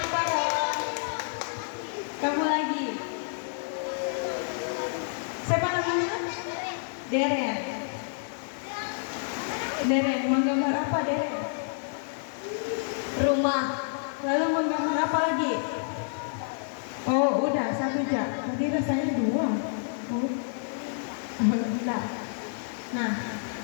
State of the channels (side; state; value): right; silent; 59 dB below the other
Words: Paro. Kamu lagi. Siapa namanya? Deren. Deren, menggambar apa Deren? Rumah. Lalu menggambar apa lagi? Oh, udah 1 jam. Tadi rasanya 2. Oh. Nah,